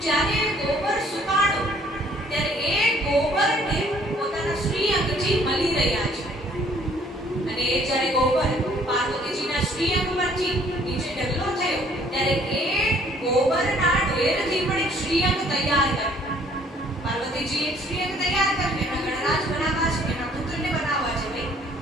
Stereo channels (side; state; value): both; normal; correlation 0.60